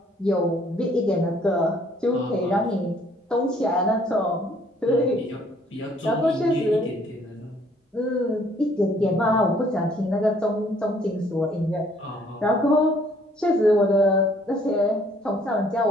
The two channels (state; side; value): normal; both; correlation 0.62